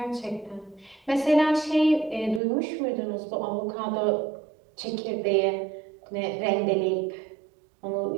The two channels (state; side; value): drops out; left; at 2.4 s